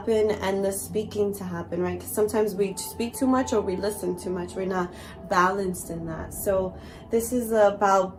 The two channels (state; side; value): identical; both; correlation 1.00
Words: and the speaking to happen, right? Because sometimes we speak too much or we listen too much. We're not balanced in that. So this is